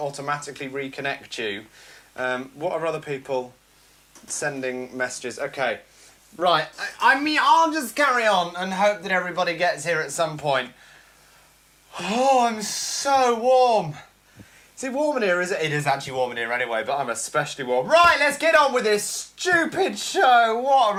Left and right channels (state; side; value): identical; both; correlation 1.00